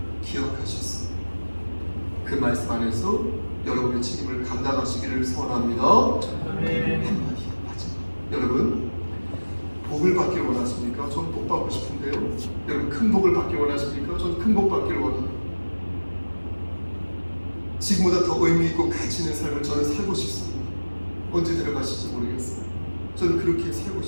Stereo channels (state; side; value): inverted; both; correlation -1.00